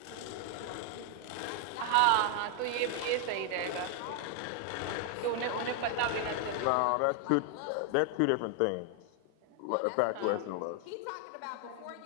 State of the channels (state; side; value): different; both; correlation 0.00